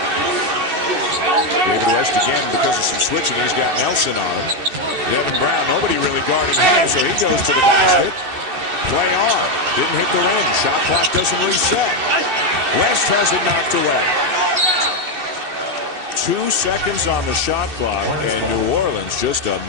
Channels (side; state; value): left; late; 2.6 ms